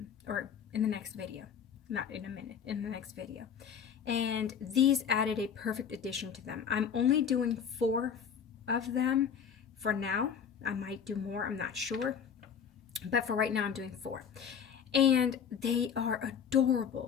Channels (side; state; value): right; quieter; 7.5 dB